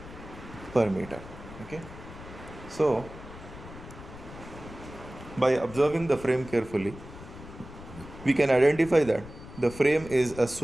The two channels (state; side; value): noise; left; rumble, 15 dB below the sound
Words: per meter. Okay, so by observing the frame carefully, we can identify that the frame is a